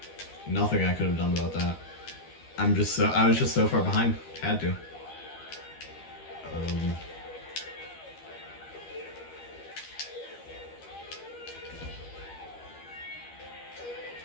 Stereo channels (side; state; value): right; late; 13 ms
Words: Nothing I could have done about that. I was just so far behind. Had to.